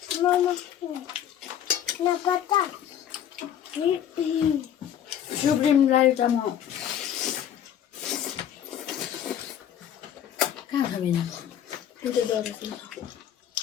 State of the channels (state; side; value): quieter; right; 10.0 dB